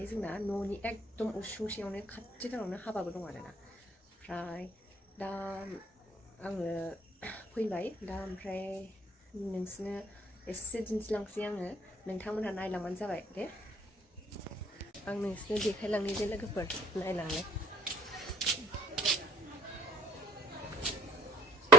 जोंना न'नि एकदम उसुंसेयावनो खाथिथारावनो हाबाबो दं आरोना ओमफ्राय दा आङो फैबाय दा ओमफ्राय नोंसिनो एसे दिन्थिलांसै आङो नोंथांमोनहा नायलांबानो जाबाय दे आं नोंसिनो देखायलांनि दे लोगोफोर नायलांनो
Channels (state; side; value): normal; both; correlation 0.57